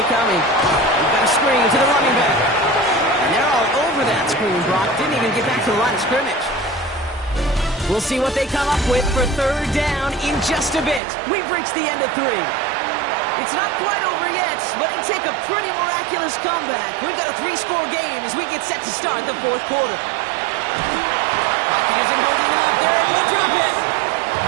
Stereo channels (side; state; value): left; drops out; at 11.0 s